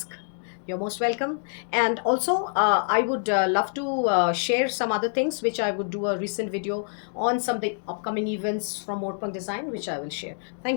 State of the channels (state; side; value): silent; right; digital silence